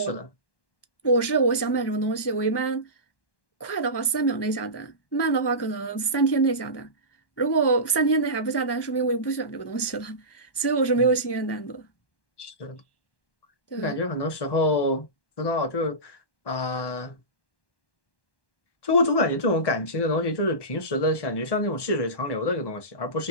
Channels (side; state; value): right; late; 1.1 ms